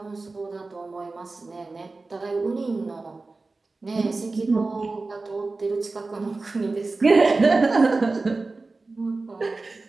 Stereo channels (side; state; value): left; quieter; 3.6 dB